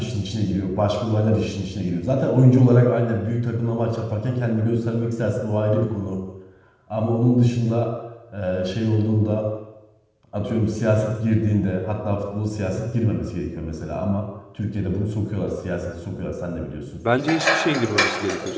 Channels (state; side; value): identical; both; correlation 1.00